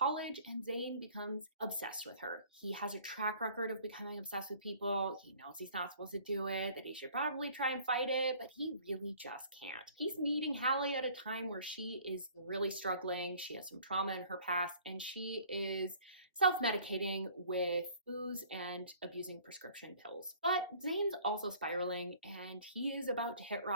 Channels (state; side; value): inverted; both; correlation -0.52